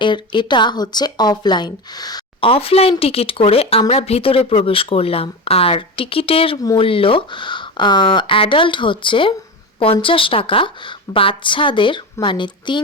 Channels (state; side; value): normal; both; correlation 0.22